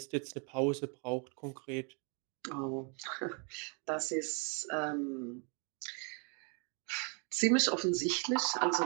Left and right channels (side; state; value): left; quieter; 36.1 dB